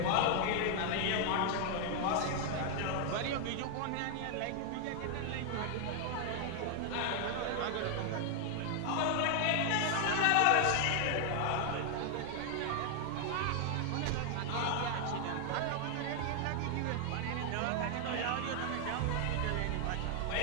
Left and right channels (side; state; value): both; different; correlation 0.00